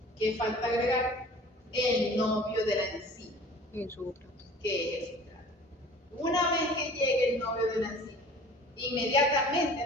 ¿Qué falta agregar? El novio de la enzima, Y el sustrato. que es el sustrato. Una vez que llegue el novio de la enzima, inmediatamente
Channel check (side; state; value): both; normal; correlation 0.46